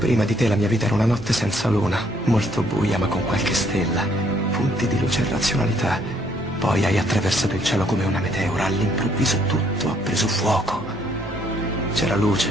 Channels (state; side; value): normal; both; correlation 0.67